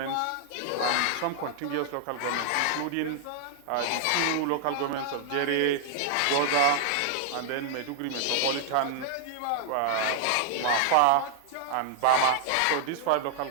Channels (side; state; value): both; different; correlation -0.01